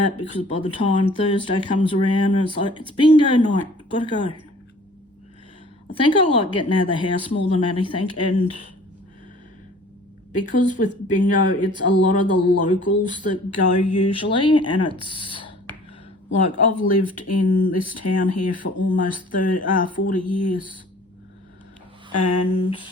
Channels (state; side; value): normal; both; correlation 0.50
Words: because by the time Thursday comes around, it's like, it's bingo night, gotta go. I think I like getting out of the house more than anything, and because with bingo, it's a lot of the locals that go usually, and it's like, I've lived in this town here for almost 40 years, and